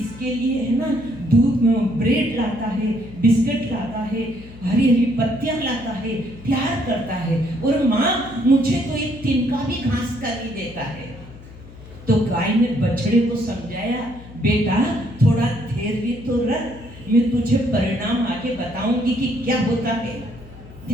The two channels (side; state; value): left; noise; hum, 18 dB below the sound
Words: लिए है ना दूध में ब्रेड लाता है, बिस्किट लाता है, हरी हरी पत्तियां लाता है, प्यार करता है, और माँ मुझे तो एक तिनका भी घास का नहीं देता है। तो गाय ने बछड़े को समझाया, बेटा थोड़ा धैर्य तो रख, मैं तुझे परिणाम आके बताऊंगी कि क्या होता है,